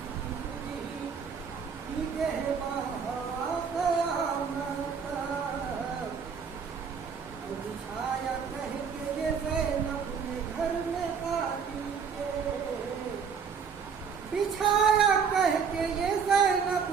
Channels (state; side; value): quieter; left; 6.4 dB